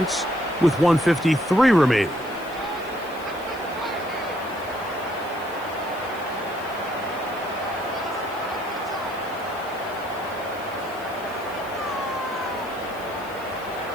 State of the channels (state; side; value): noise; left; hiss, 21 dB below the sound